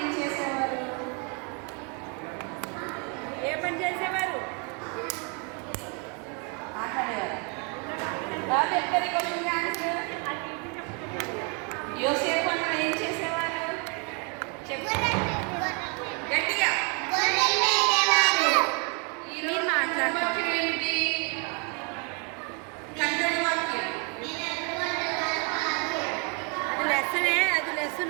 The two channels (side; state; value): left; quieter; 35.3 dB